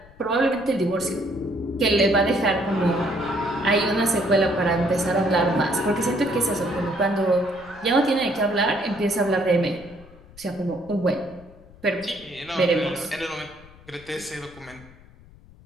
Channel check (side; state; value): left; noise; rumble, 23 dB below the sound